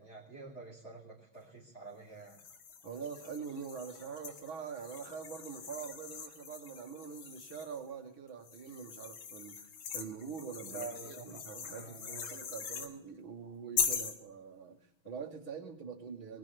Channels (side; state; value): right; late; 6.2 ms